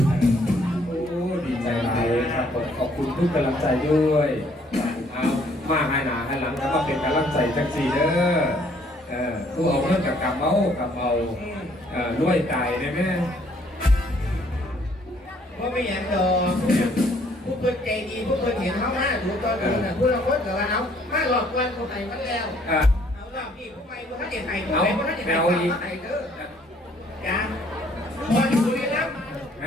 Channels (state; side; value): normal; both; correlation 0.63